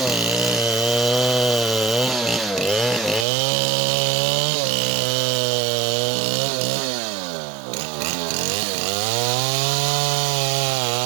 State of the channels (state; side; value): drops out; left; at 3.2 s